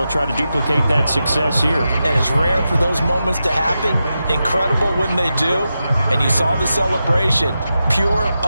try to duplicate that success here. And it's rare for those moments to happen. Incredible when they do. And you saw the celebration. Pure,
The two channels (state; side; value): inverted; both; correlation -0.90